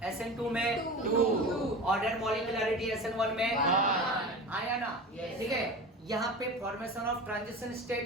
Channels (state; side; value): normal; both; correlation 0.31